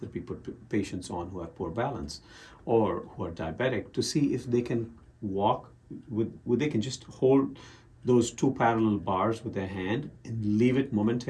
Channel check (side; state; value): both; identical; correlation 1.00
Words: we put patients on who have poor balance or who are diabetic to see if they can walk they can just hold those 2 parallel bars with their hand and leave it